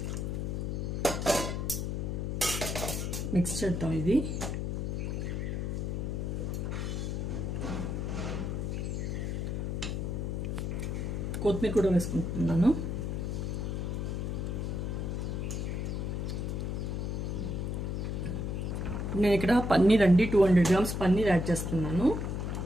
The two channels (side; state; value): left; noise; hum, 2 dB below the sound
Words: మిక్స్ చేద్దాం. ఇది కొత్తిమీర కూడా వేసుకుంటున్నాను. నేను ఇక్కడ పన్నీర్ అండి, 200 గ్రామ్స్ పన్నీర్ యాడ్ చేస్తున్నాను.